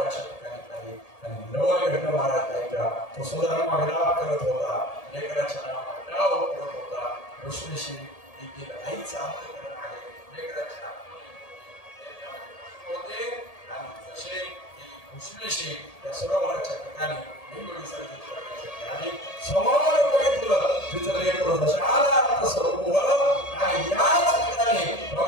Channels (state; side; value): late; right; 1.8 ms